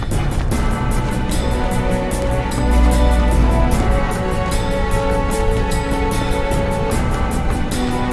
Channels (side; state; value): both; identical; correlation 1.00